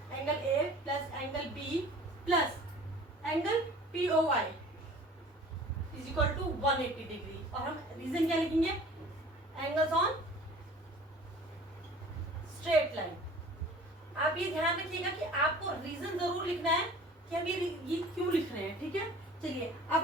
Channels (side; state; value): both; normal; correlation 0.46